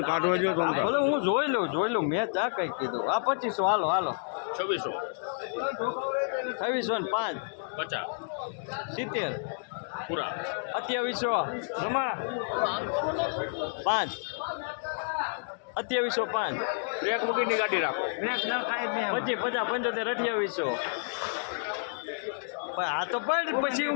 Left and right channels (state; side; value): silent; right; digital silence